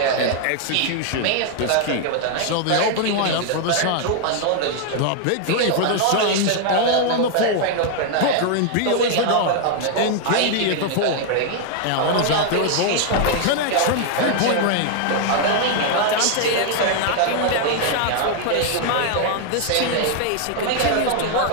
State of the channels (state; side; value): different; both; correlation 0.00